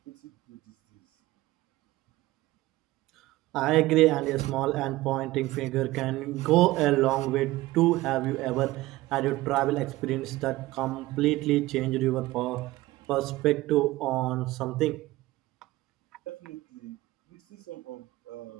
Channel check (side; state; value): left; quieter; 18.2 dB